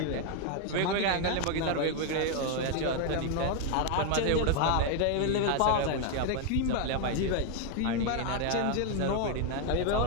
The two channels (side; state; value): both; different; correlation 0.01